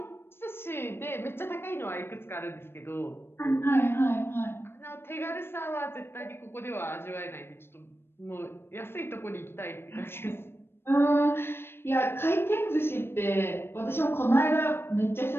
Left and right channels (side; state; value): right; late; 0.11 ms